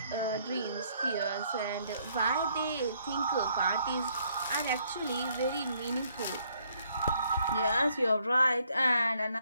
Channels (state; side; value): inverted; both; correlation -0.68